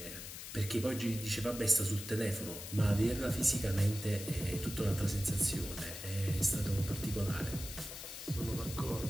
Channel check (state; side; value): noise; left; hiss, 10 dB below the sound